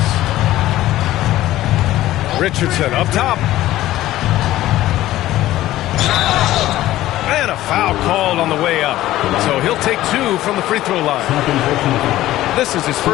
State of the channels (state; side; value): quieter; right; 15.0 dB